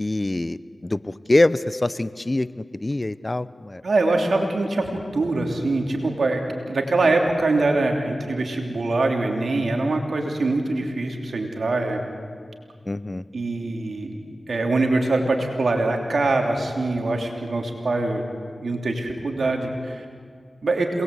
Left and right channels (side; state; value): both; normal; correlation 0.94